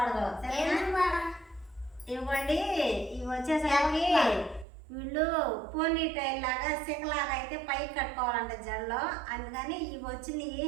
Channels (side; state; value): left; drops out; at 4.7 s